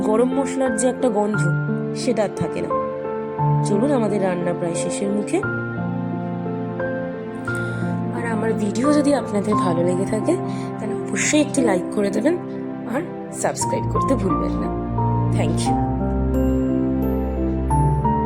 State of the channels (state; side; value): identical; both; correlation 1.00